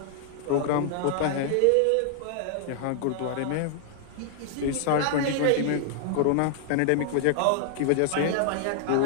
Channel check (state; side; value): different; both; correlation -0.01